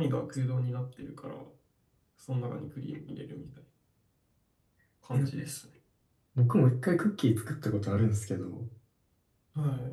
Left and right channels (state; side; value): identical; both; correlation 1.00